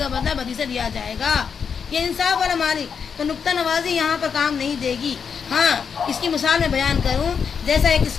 بدلہ بدی سے دیا جائے گا. یہ انصاف والا مالک. تو نقطہ نوازی یہاں پر کام نہیں دے گی. ہاں اس کی مثال میں بیان کروں، جیسا ایک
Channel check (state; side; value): quieter; right; 6.5 dB